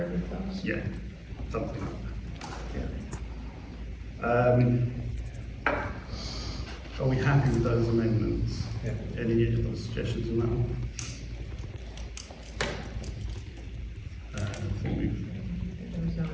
close? Yeah, something like Yeah. that. Are we happy with those amendments? Yeah. Any other suggestions on that one? I think we've There was no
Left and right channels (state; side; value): identical; both; correlation 1.00